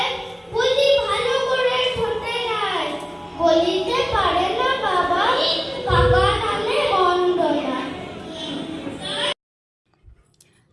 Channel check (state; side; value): identical; both; correlation 1.00